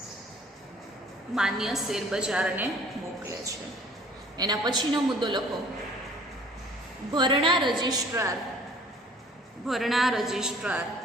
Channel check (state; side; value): normal; both; correlation 0.53